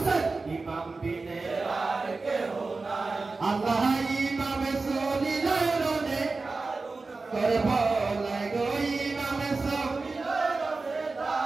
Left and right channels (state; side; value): quieter; left; 3.8 dB